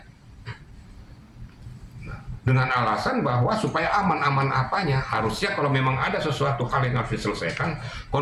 Dengan alasan bahwa supaya aman-aman apanya, harusnya kalau memang ada sesuatu hal yang harus diselesaikan,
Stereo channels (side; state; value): both; identical; correlation 1.00